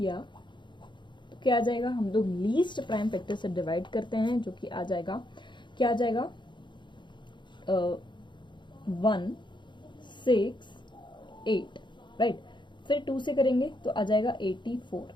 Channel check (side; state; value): right; late; 0.23 ms